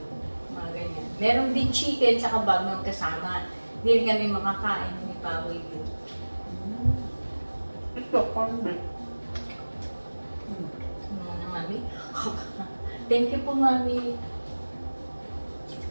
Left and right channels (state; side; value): inverted; both; correlation -1.00